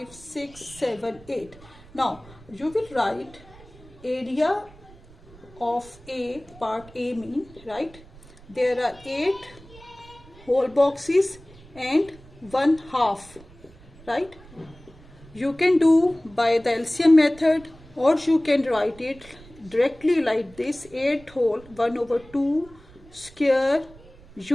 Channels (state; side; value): noise; right; rumble, 22 dB below the sound